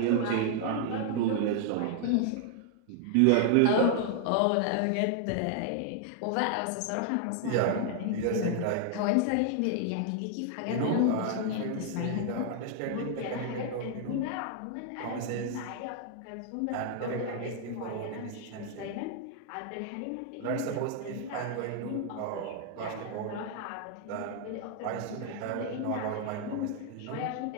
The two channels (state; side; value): different; both; correlation 0.00